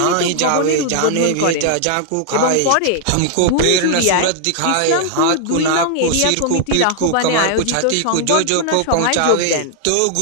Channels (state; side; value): different; both; correlation 0.00